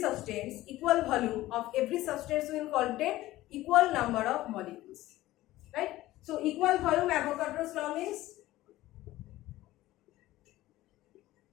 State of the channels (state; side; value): quieter; right; 16.4 dB